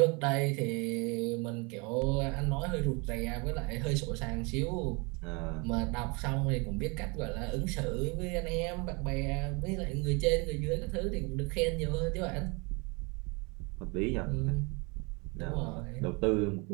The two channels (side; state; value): left; quieter; 30.0 dB